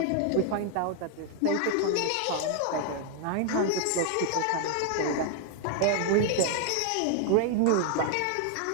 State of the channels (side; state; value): both; different; correlation 0.00